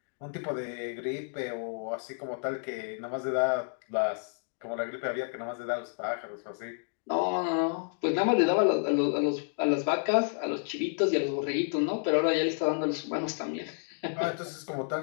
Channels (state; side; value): silent; right; digital silence